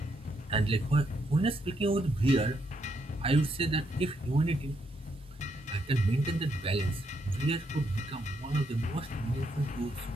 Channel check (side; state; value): both; normal; correlation 0.77